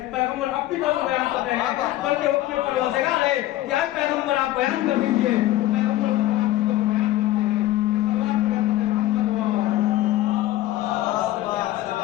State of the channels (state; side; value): quieter; right; 15.1 dB